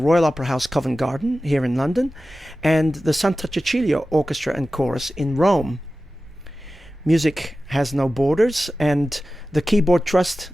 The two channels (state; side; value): normal; both; correlation 0.95